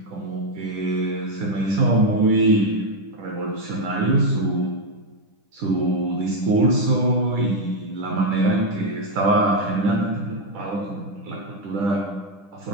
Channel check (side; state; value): left; late; 10 ms